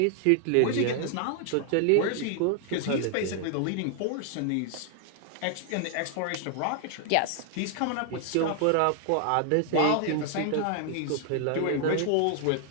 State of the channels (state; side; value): different; both; correlation 0.00